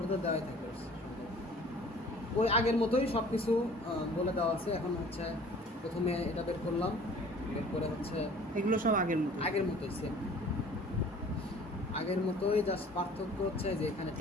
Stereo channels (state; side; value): normal; both; correlation 0.50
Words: তো দেওয়াই থাকবে। ওই আগের মতোই সব কিছু বলে দেওয়া আছে। এখন হচ্ছে প্রথমে এটা বের করলাম, বের করে হচ্ছে এগুলো সব আগের মতো। আগের মতোই সেম, আগের মতোই, জাস্ট পার্থক্য হচ্ছে যে এখানে